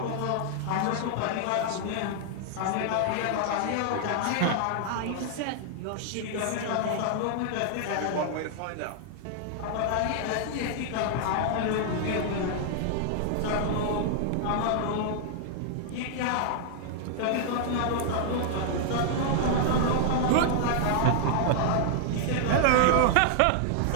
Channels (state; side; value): different; both; correlation 0.00